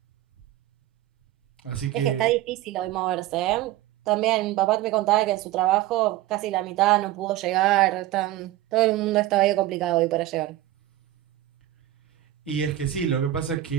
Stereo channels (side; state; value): left; quieter; 14.4 dB